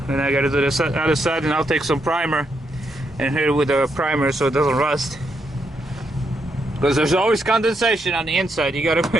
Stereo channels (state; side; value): normal; both; correlation 0.80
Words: and I gotta do the other side, and I'll take some primer and hit it with a primer so it doesn't rust, because there's always condensation on the inside. You